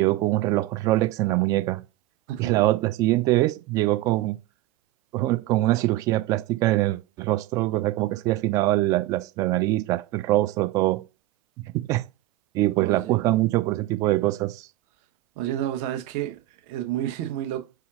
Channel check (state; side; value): quieter; left; 16.1 dB